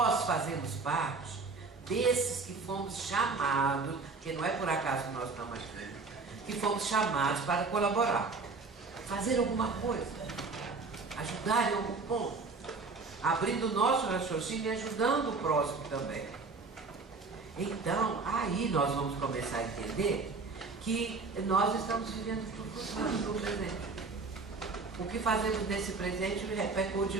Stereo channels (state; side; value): quieter; left; 4.1 dB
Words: fazemos parte desses que fomos chamados, que não é por acaso que nós estamos aqui, que fomos chamados para colaborar, fazer alguma coisa, ajudar em algum ponto, abrindo o nosso raciocínio e ajudando o próximo também. Então, aí nós vamos começar a entender que nós estamos vivendo no futuro, no presente. O que fazemos nesse presente repercute